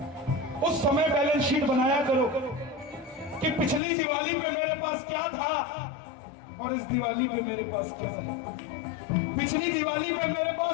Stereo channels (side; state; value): right; drops out; at 3.8 s